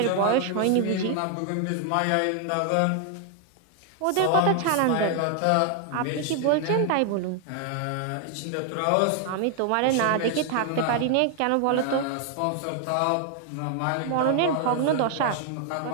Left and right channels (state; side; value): different; both; correlation 0.00